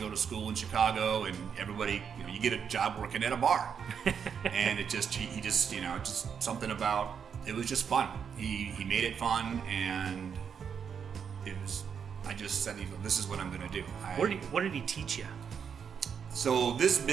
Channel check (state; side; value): quieter; left; 7.1 dB